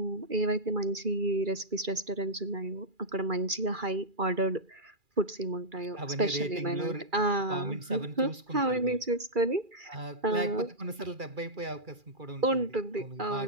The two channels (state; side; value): late; left; 2.4 ms